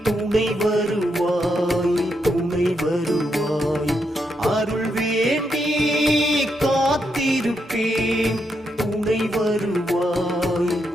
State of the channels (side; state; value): both; normal; correlation 0.81